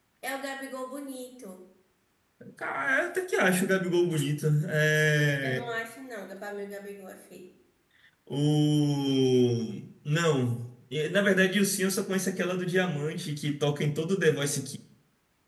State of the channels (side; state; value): both; identical; correlation 1.00